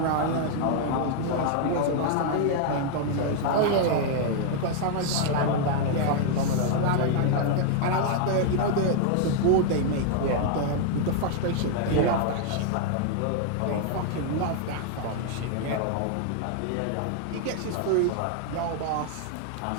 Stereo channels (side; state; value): both; different; correlation 0.00